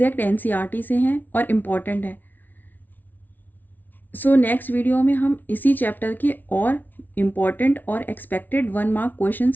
एनसीईआरटी से हैं और इम्पॉर्टेंट है। सो नेक्स्ट वीडियो में हम इसी चैप्टर के और इम्पॉर्टेंट और एक्सपेक्टेड 1 मार्क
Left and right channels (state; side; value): late; right; 0.084 ms